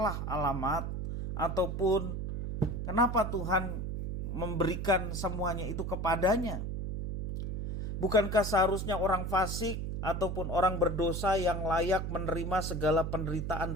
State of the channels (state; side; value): noise; right; hum, 3 dB below the sound